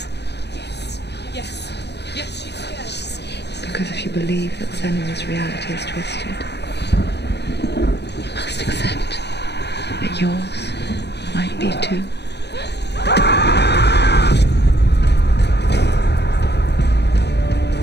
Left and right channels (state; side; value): late; right; 0.49 ms